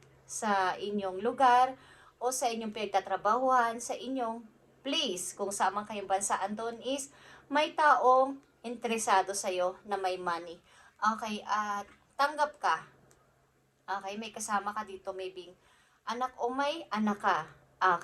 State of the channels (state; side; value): identical; both; correlation 1.00